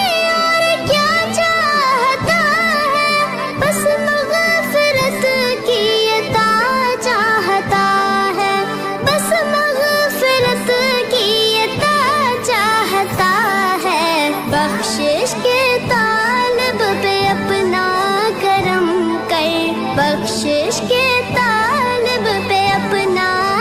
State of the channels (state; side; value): identical; both; correlation 1.00